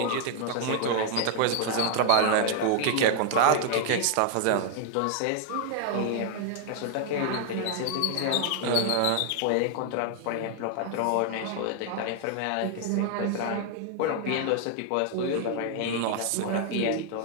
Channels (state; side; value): different; both; correlation 0.00